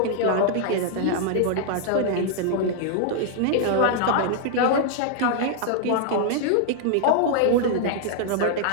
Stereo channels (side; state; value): both; different; correlation -0.01